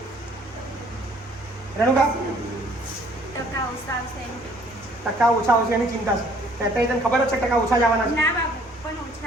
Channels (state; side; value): normal; both; correlation 0.59